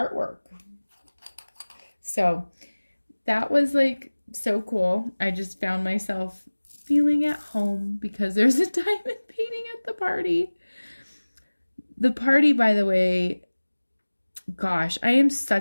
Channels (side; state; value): both; inverted; correlation -1.00